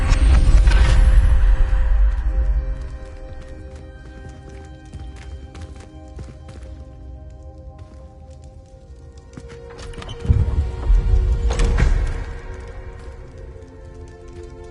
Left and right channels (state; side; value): identical; both; correlation 1.00